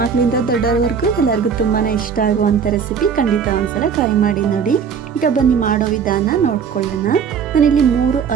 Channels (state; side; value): quieter; left; 6.7 dB